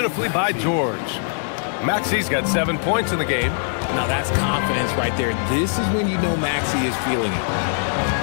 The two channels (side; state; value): right; silent; 65 dB below the other